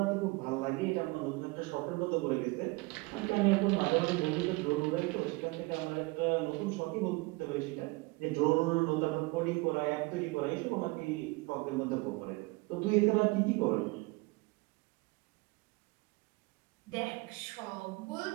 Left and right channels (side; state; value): left; quieter; 24.7 dB